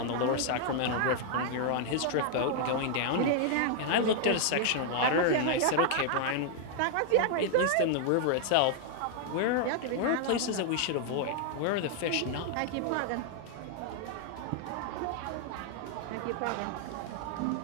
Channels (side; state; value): both; different; correlation 0.00